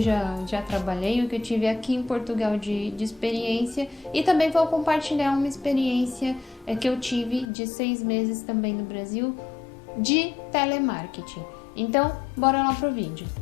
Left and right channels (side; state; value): right; drops out; at 7.5 s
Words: já trabalhei, o que eu tive aqui em Portugal de experiência, e também vou compartilhar uma experiência que eu tive de 6 meses também no Brasil de telemarketing. Então, bora lá pro vídeo.